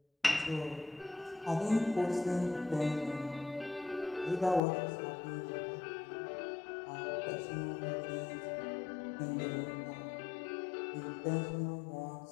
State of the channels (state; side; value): drops out; right; at 4.6 s